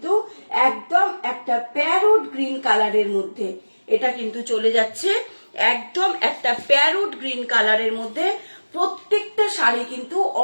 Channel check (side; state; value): both; inverted; correlation -1.00